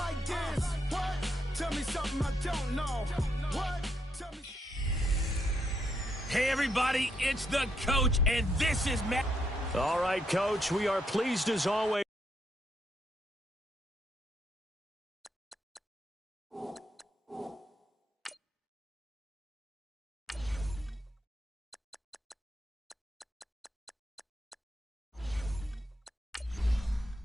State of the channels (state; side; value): normal; both; correlation 0.77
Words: this. What? Tell me something I don't know. What? Tell me. Hey, everybody, it's the coach, and this is Matt. All right, Coach, we are pleased as always.